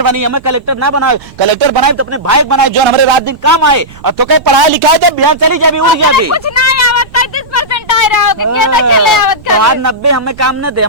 बनी। हमें कलेक्टर ना बनाए, कलेक्टर बनाए तो अपने भाई बनाए जो हमारे रात दिन काम आए। और तो कहीं पढ़ाई लिखाई दे बिहार चली जाए उड़ गया भी। कुछ नहीं आवत, 33% आए रहो कि के तक चले आवत तो आज 90 हमें काम न दे,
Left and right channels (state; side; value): noise; right; rumble, 22 dB below the sound